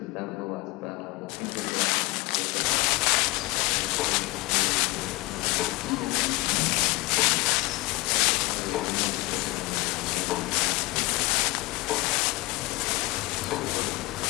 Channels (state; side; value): quieter; right; 22.3 dB